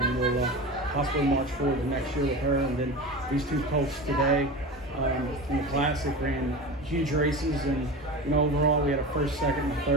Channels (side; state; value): both; normal; correlation 0.29